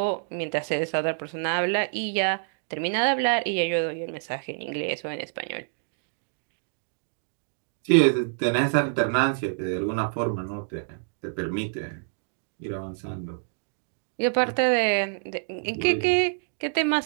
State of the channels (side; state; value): left; silent; digital silence